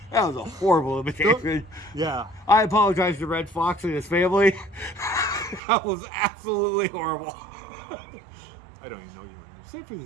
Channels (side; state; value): left; drops out; at 5.6 s